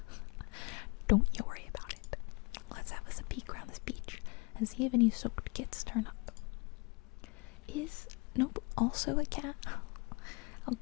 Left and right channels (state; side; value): quieter; right; 29.8 dB